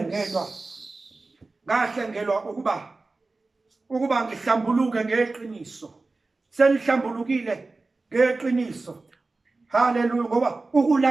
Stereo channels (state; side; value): quieter; left; 3.5 dB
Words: ngahlengelwa ukuba ngihlambuluke ngeqiniso senihlambulukile ngeqiniso. Hallelujah ngoba